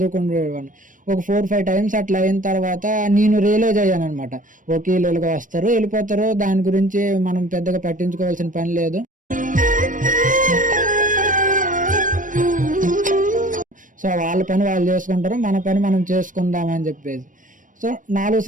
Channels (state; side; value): late; left; 0.38 ms